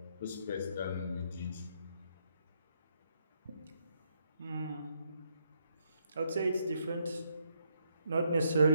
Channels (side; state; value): both; inverted; correlation -0.76